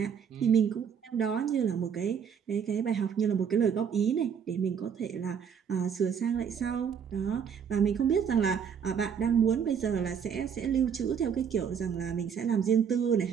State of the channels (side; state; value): left; quieter; 7.3 dB